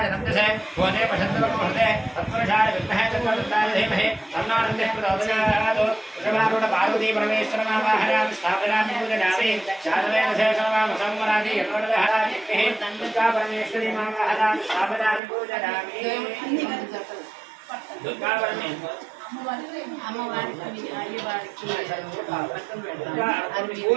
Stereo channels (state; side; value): drops out; left; at 15.2 s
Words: तन्दसे भोजे पशन्तवकुहृते तत्पुरुषाय विद्महे तत्त्वदत्ताय धीमहि तन्नो नन्दः प्रचोदयात् वृषभारूढपार्वती परमेश्वरमावाहनामि स्थापयामि पूजयामि शादवेन शेषवामसंवरादि यतोदहराज्ञः दुर्गा परमेश्वरी मावाहनामि स्थापयामि पूजयामि दुर्गा परमेश्वरी అమ్మవారికి అయ్యవారికి